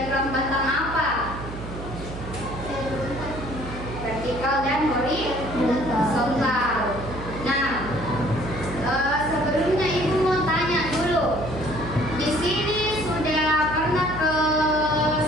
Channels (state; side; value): noise; right; hum, 10 dB below the sound